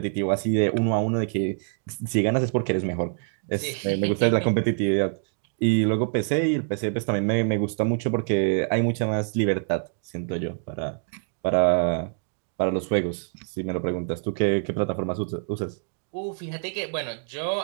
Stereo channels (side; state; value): left; silent; digital silence